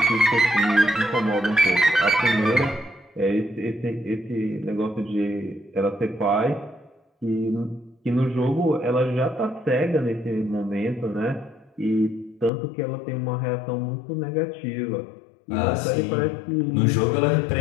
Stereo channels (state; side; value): drops out; right; at 12.5 s